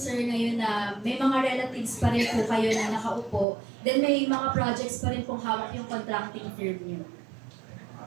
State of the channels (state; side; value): drops out; left; at 3.5 s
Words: ngayon na may mga relatives pa rin po kayo na nakaupo, then may mga projects pa rin pong hawak yung contracting firm niyo.